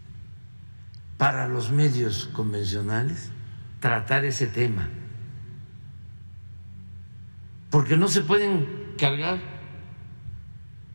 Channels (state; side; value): inverted; both; correlation -1.00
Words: para los medios convencionales tratar ese tema, porque no se pueden cargar